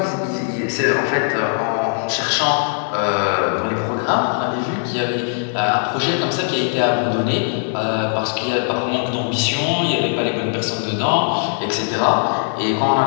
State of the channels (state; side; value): silent; right; 60 dB below the other